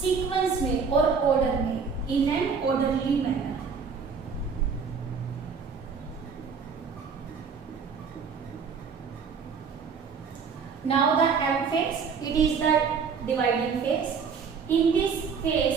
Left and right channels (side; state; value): left; quieter; 5.8 dB